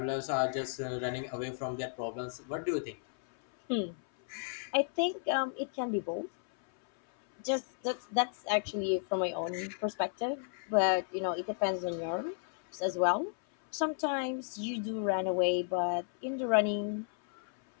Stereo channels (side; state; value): right; silent; 55 dB below the other